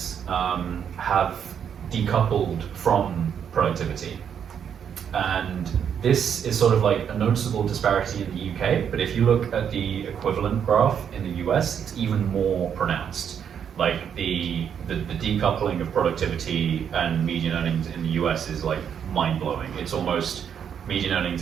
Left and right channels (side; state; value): left; quieter; 8.1 dB